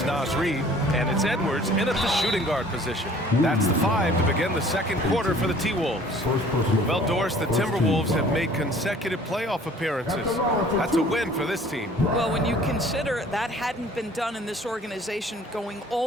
Naz Reid, and it's Edwards in at the shooting guard position. That's the 5 to begin the second quarter for the T-Wolves. Well, Doris, the Timberwolves have made consecutive playoff appearances. That's a win for this team. Well, when you consider that hadn't been done in this organization going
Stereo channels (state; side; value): normal; both; correlation 0.52